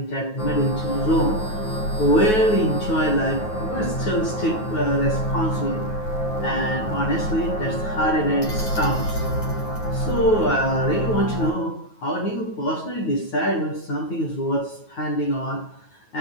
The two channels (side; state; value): right; late; 9.3 ms